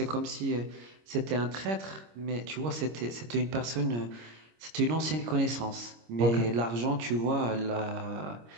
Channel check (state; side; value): late; left; 26 ms